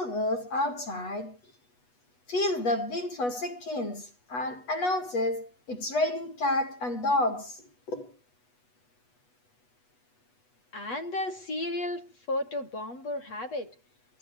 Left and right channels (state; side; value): late; right; 8.2 ms